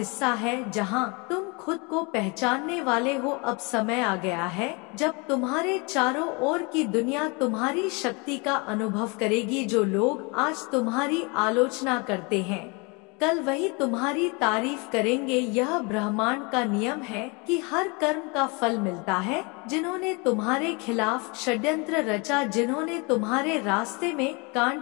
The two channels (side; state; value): right; quieter; 29.8 dB